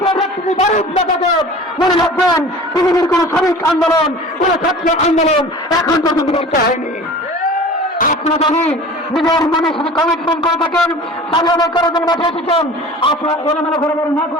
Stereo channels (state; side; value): normal; both; correlation 0.40